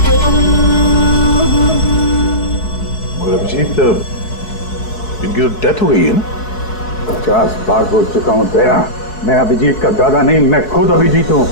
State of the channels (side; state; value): right; late; 4.7 ms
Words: और अभिजीत, इनकी तो डेथ हो गई है ना? 50 बार बोल चुका हूं दया, मैं अभिजीत का दादा नहीं, मैं खुद अभिजीत हूं।